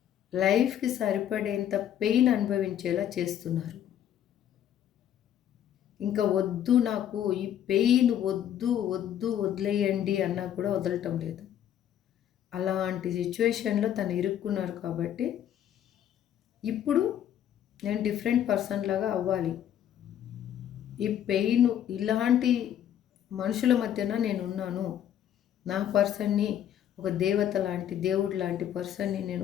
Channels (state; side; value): quieter; right; 10.4 dB